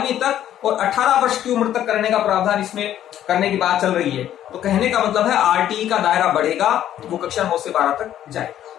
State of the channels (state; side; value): quieter; right; 11.4 dB